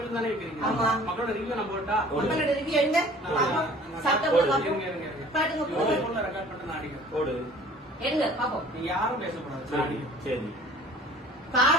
தானே வைக்கிறீங்க. ஆமா. மக்களோட ரிவ்யூ நம்ம போட்டா மக்களோட ரிவ்யூ எங்க பாப்போம். சாப்பிட்டவங்க பாப்போம். பாட்டுங்க போடுங்க. போன்ல ரெக்கார்ட் பண்ணி நான் அடிக்கிறேன். போடு. எடுங்க பாப்போம். நீங்க யாரும் பேசக்கூடாது. நான் அடிக்கிறேன். சரி.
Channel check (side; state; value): both; normal; correlation 0.49